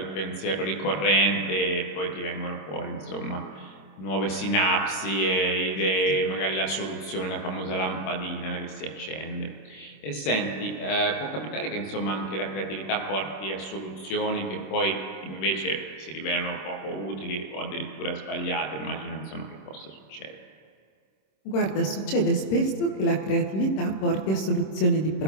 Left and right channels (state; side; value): late; right; 26 ms